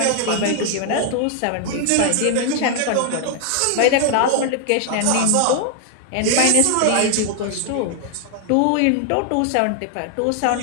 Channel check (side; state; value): both; different; correlation 0.00